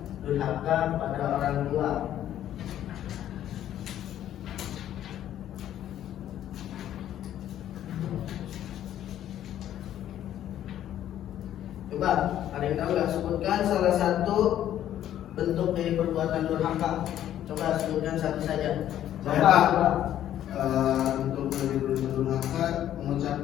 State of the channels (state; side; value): quieter; right; 11.5 dB